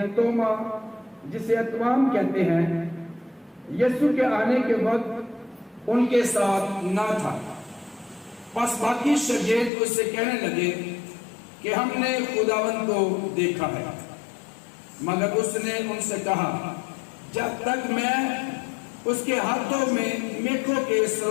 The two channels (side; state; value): right; drops out; at 9.7 s